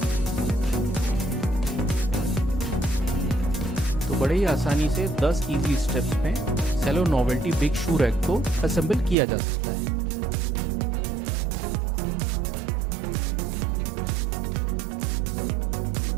तो बड़े ही आसानी से 10 इजी स्टेप्स में सेलो नोवेल्टी बिग शू रैक को असेंबल किया जा सकता है।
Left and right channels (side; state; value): left; drops out; at 9.2 s